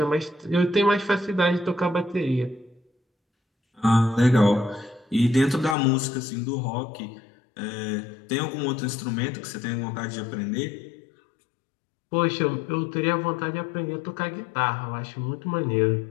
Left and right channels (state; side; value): drops out; right; at 5.8 s